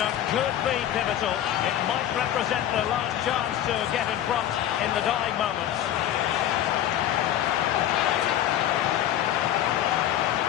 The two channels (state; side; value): quieter; right; 11.5 dB